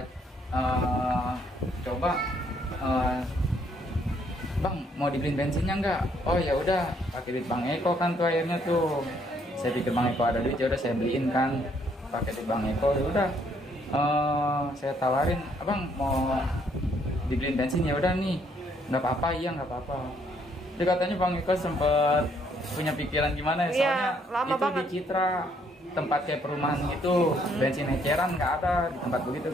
coba, bang mau dibeliin bensinnya nggak? Oh ya udah, pakai duit bang Eko kan tuh akhirnya tuh. Saya pikir bang Eko ada duit, ya udah saya beliin kan, pakai duit bang Eko. Ya udah, saya tawarin, abang mau dibeliin bensin ya udah nih, nggak apa-apa, iya nggak apa-apa. Jadi katanya bang Eko sempet punya pikiran gimana ya, Iya, soalnya lama itu banget. di Citra tempat kayak perumahan gitu, bensin eceran nggak ada di tempat begitu.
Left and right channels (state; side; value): normal; both; correlation 0.68